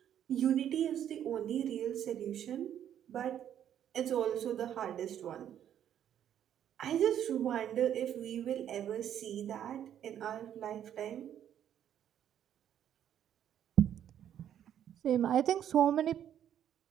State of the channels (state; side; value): quieter; left; 10.1 dB